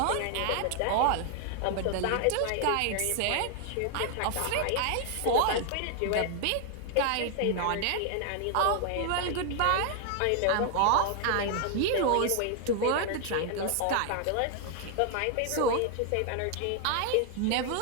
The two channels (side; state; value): both; different; correlation 0.00